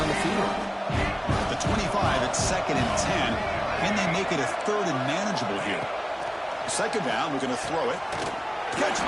the field. At the 25, it's 2nd and 10. Can they make it a 3rd and manageable here? 2nd down, we're going to throw it. Catch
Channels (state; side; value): identical; both; correlation 1.00